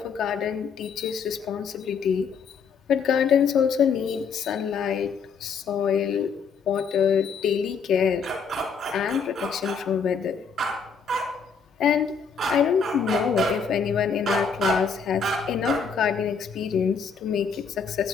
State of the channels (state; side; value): quieter; right; 5.8 dB